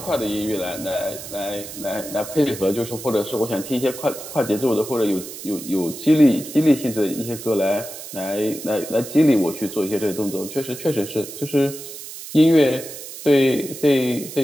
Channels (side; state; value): right; noise; hiss, 12 dB below the sound